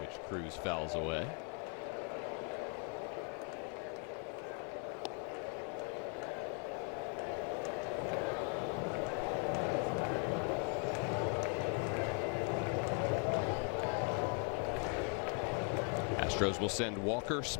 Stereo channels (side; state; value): right; quieter; 37.7 dB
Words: Cruz fouls away. Astros will send Walker,